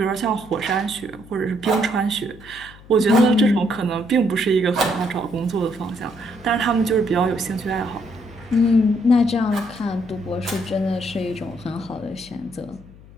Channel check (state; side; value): noise; left; hum, 21 dB below the sound